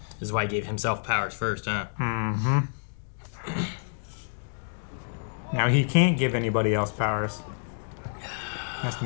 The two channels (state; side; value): silent; right; digital silence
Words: This is why he gave himself powers first, huh? Mm-hmm. Now he can't give anybody else powers. He has to